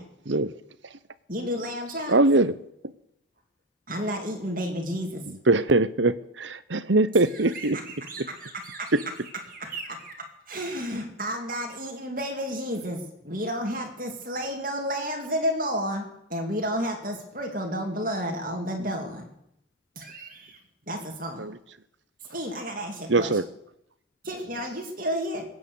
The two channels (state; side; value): normal; both; correlation 0.06